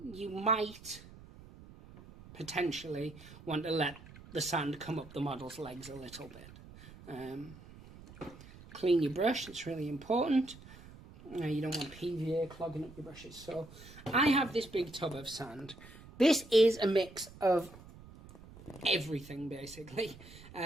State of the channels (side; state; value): right; noise; rumble, 18 dB below the sound